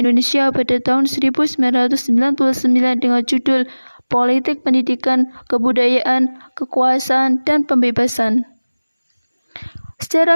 pada tahun 1999 dengan judul Politik Pendidikan, Kebudayaan, Kekuasaan, dan Pembebasan.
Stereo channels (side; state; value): both; inverted; correlation -1.00